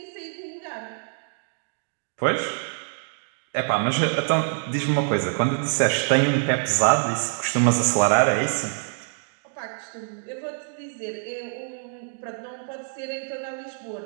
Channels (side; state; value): left; silent; digital silence